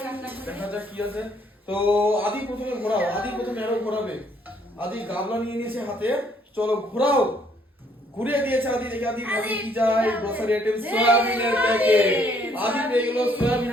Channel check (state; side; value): normal; both; correlation 0.66